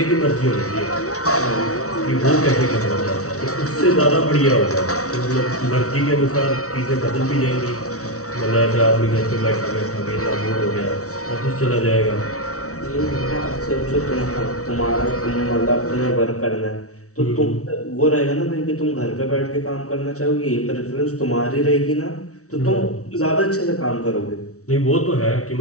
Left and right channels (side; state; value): right; late; 0.64 ms